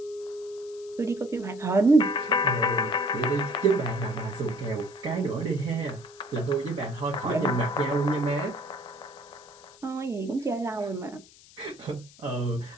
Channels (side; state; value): left; noise; hiss, 23 dB below the sound